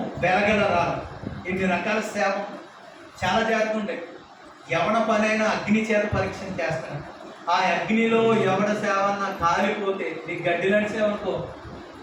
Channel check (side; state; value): both; identical; correlation 1.00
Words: వెలగల రాళ్ళు, ఇన్ని రకాల సేవ చాలా చేస్తుంటాయి. ఎవడ పనైనా అగ్ని చేత పరీక్ష చేస్తాను. ఆ అగ్నిలో ఎవడ సేవ అన్నా కాలిపోతే, నీకు గడ్డి లాంటి సేవ అనుకో